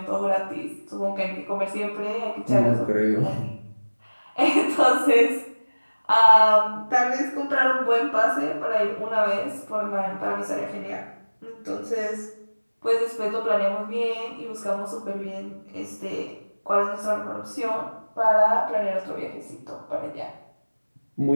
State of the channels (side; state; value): both; inverted; correlation -1.00